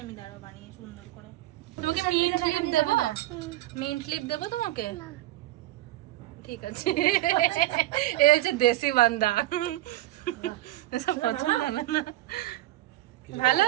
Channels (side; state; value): left; quieter; 16.0 dB